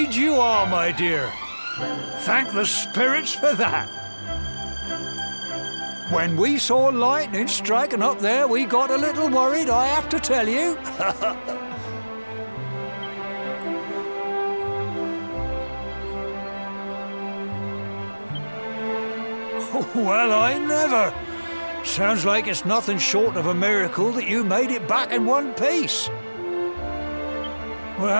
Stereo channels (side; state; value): both; inverted; correlation -1.00